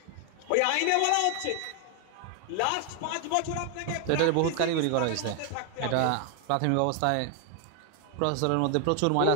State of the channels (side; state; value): both; different; correlation 0.01